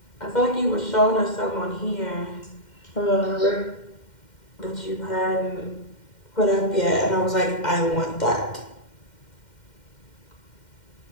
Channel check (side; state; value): right; late; 2.1 ms